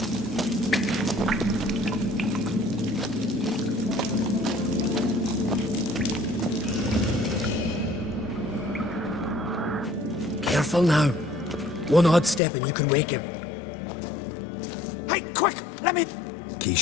Careful now. One odd step and you can wake him. Hey, quick! Let me... Key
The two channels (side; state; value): right; drops out; at 12.4 s